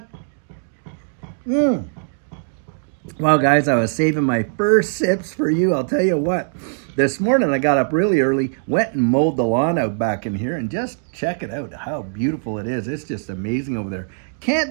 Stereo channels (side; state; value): left; silent; digital silence